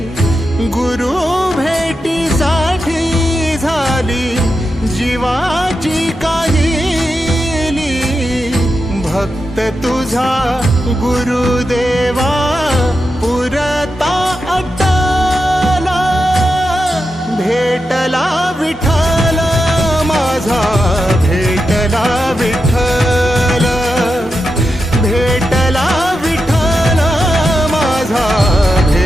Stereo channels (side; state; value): both; normal; correlation 0.88